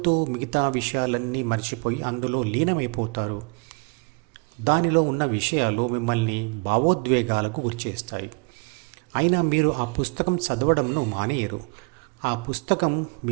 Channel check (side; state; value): left; quieter; 32.6 dB